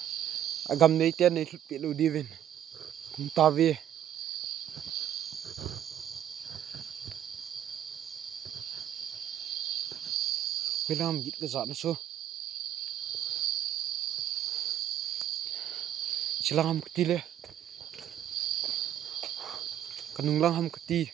agam nei ten nei pi lu divin kum ta vi Wilam git ke zat na so silang ham kti le kanung lang ham kti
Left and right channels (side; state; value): left; quieter; 10.8 dB